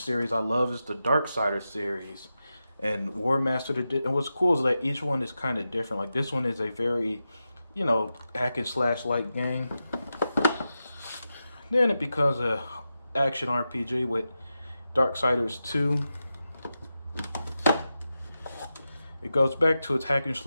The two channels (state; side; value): inverted; both; correlation -0.90